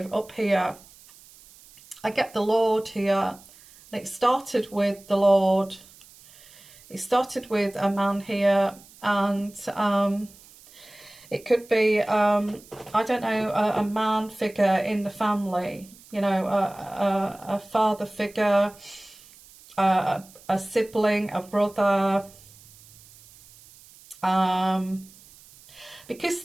up here. I get the Lord here, and it started with the Lord. It started with a man here, and it could be, I don't know, a man figure in the family, you know, a father figure, a sibling, a brother, because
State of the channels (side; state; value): right; noise; hiss, 24 dB below the sound